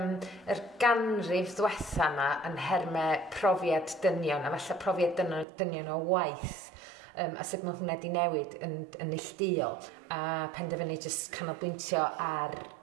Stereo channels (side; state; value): left; drops out; at 5.5 s